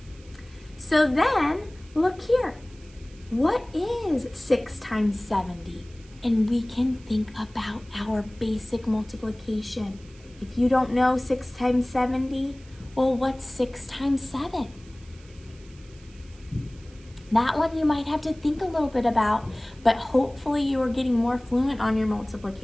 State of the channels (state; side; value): noise; right; hiss, 26 dB below the sound